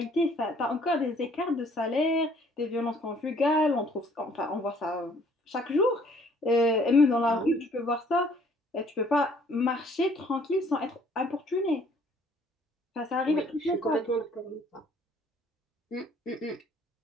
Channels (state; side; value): normal; both; correlation 0.59